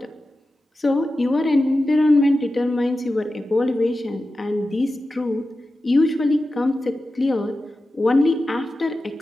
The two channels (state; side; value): normal; both; correlation 0.93